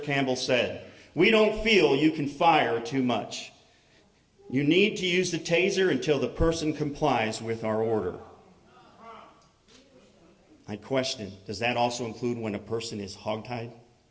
Campbell said, "We don't feel you can fire too much. You need to use the taser until the person complies with our order." I question, does that also include when a person is hogtied?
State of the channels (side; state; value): both; identical; correlation 1.00